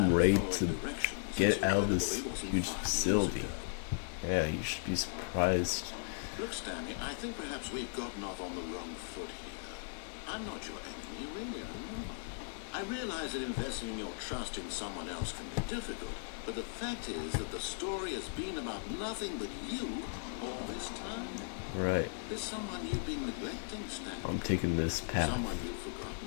at ready following to directions, get it's out of this incredible it wasn't huge 5 years facility. ago. Yeah, you should be surprised. Look, Stanley, I think perhaps we've gotten off on the wrong foot here. I'm not your enemy, really, I'm not. I realize that investing in your trust in someone else can be difficult, but the fact is that the story has been about nothing but you all this time. Right. There's someone you've been neglecting, Stanley. I'm taking this path. Someone you've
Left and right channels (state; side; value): silent; right; digital silence